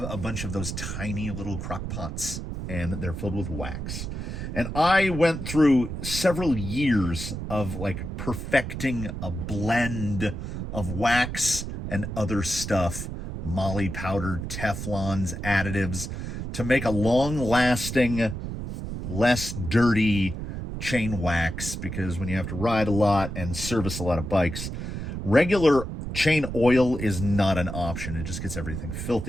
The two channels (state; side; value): noise; right; rumble, 6 dB below the sound